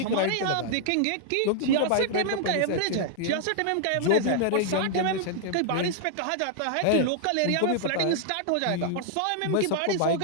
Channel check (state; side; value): different; both; correlation -0.01